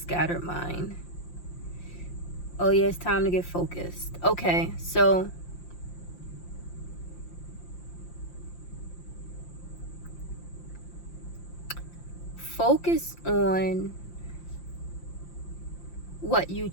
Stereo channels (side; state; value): right; late; 5.8 ms